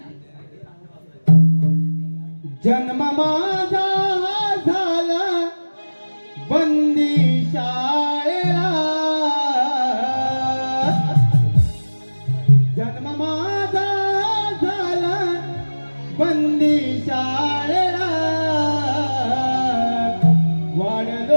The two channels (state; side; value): inverted; both; correlation -1.00